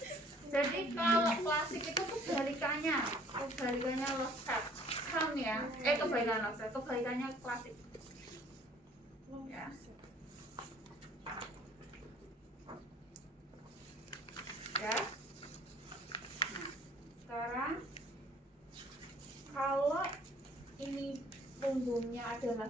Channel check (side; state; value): both; normal; correlation 0.55